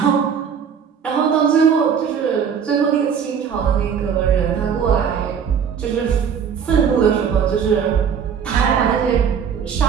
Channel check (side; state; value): left; quieter; 7.3 dB